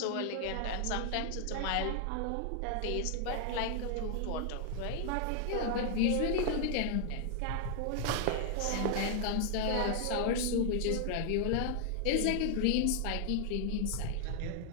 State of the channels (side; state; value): both; different; correlation 0.00